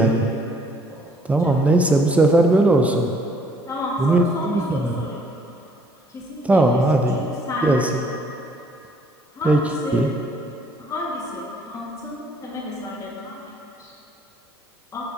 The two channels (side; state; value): both; normal; correlation 0.64